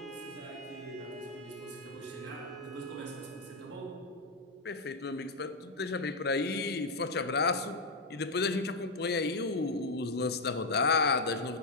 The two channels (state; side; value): quieter; right; 3.1 dB